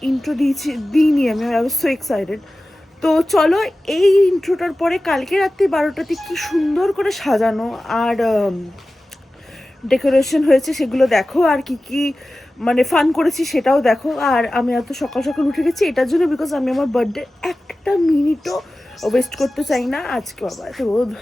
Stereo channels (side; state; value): both; normal; correlation 0.96